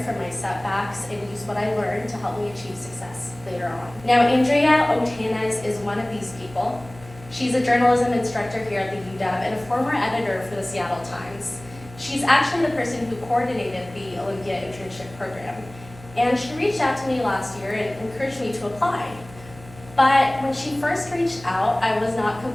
from my setbacks and use what I learned to help me achieve success later on. Now, Andrea Otanez is one of these people. She's a journalism instructor here at the UW and a former editor for the Seattle Times. She's actually the person who coordinated the Olympia internship program. And she reached out to me last year and encouraged me to apply. But when she first reached out, I was not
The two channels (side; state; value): right; noise; hum, 19 dB below the sound